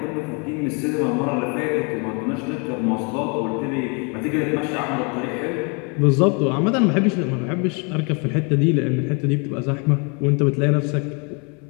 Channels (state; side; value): quieter; right; 34.0 dB